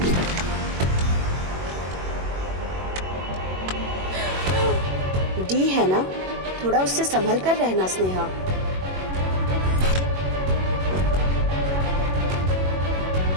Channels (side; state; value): left; late; 21 ms